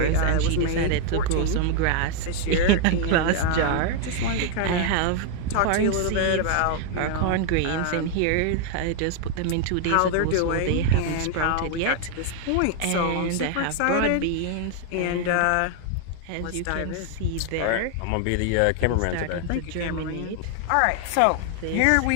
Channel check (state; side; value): different; both; correlation 0.00